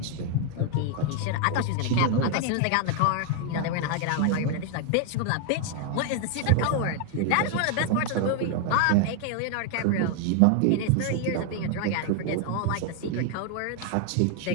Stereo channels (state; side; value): different; both; correlation 0.00